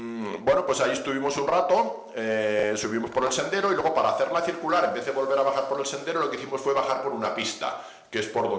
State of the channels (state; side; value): identical; both; correlation 1.00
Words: pues ahí estuvimos un rato, subimos por el sendero y luego, para hacerla circular, en vez de volver a bajar por el sendero, lo que hicimos fue bajar por una pista, que es por